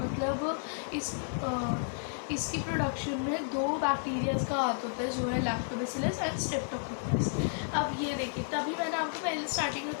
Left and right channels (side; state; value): right; silent; digital silence